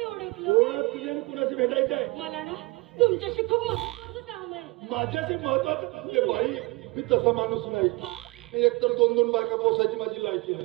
ओळखलं. कोण आहात तुम्ही आणि कुणाशी भेटायचं आहे? मला ना तुमच्याशी खूप महत्वाचं काम आहे. माझ्याशी महत्वाचं? हे बाई, मी तसा माणूस नाही. एकतर दोन बायका पोसायची माझी लायकी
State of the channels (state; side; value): quieter; left; 24.2 dB